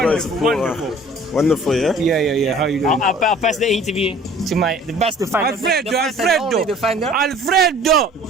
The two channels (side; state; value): both; normal; correlation 0.50